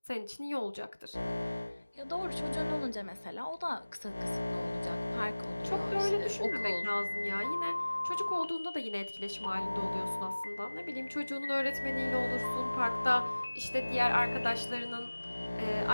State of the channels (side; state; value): both; inverted; correlation -1.00